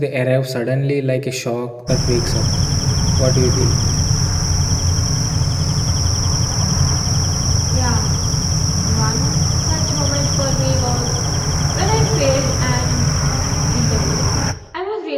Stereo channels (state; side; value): identical; both; correlation 1.00